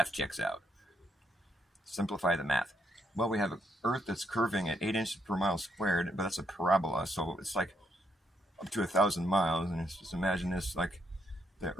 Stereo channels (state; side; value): normal; both; correlation 0.76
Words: checks out. Simplify the math. Well, we have an Earth that's curving at 8 inches per mile squared, but that's a parabola, so it's like up to 1,000 miles. And just imagine this, like the